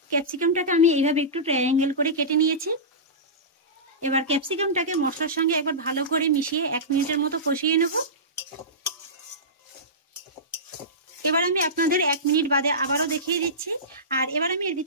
ক্যাপসিকামটাকে আমি এইভাবে একটু ট্রায়াঙ্গেল করে কেটে নিয়েছি। এবার ক্যাপসিকামটাকে মশলার সঙ্গে একবার ভালো করে মিশিয়ে 1 মিনিটের মতো কষিয়ে নেব। এবার আমি আপনাদের 1 মিনিট বাদে আবারও দেখিয়ে দিচ্ছি। আর এবার আমি এর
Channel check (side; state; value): both; normal; correlation -0.18